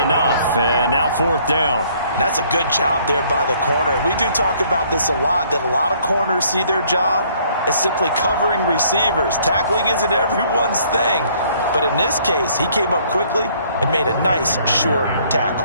And now fourth down. That's a good job there by the corner. We do talk about this a lot, that a lot of corners see their job as simply covering receivers. Tackling isn't everyone's thing. But in this case, he came up quickly and made a nice, sure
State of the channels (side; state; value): both; inverted; correlation -0.62